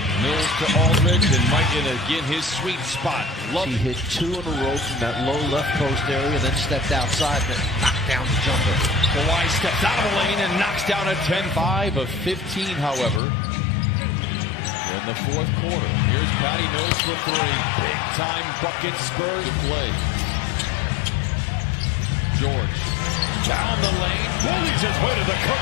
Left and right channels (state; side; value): drops out; right; at 13.2 s